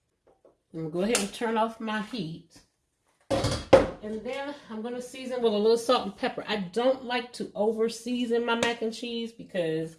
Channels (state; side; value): identical; both; correlation 1.00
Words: I'm going to go ahead and turn off my heat. And then I'm going to season with a little salt and pepper. I don't like to over season my mac and cheese because,